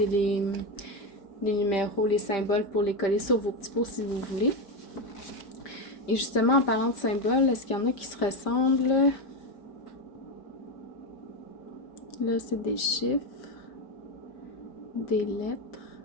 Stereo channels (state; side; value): late; right; 5.1 ms